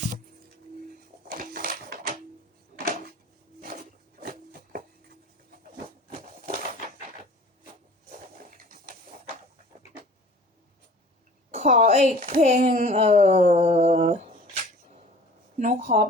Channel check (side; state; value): both; normal; correlation 0.46